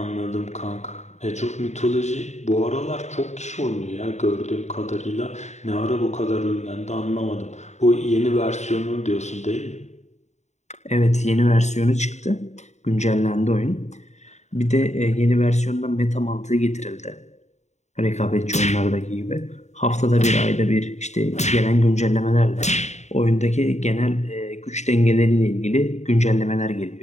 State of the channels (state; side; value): late; right; 0.33 ms